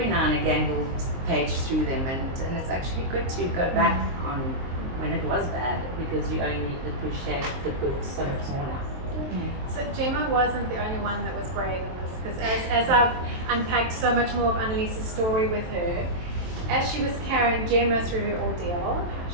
now and again we'll page through them. And it's actually good to go back on when it was bad, because you only appreciate the good so much more now. So Gemma wasn't the only one that was brave in this, because as I've unpacked so much more of Annalise's story with her, as she was carrying Gemma through her ordeal,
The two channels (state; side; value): late; left; 23 ms